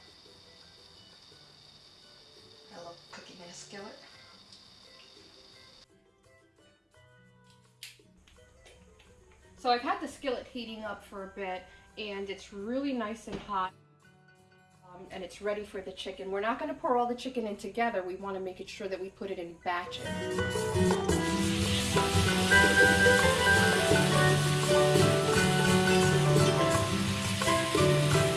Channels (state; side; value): identical; both; correlation 1.00